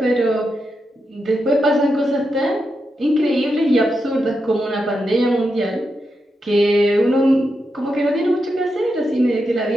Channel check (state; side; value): normal; both; correlation 0.86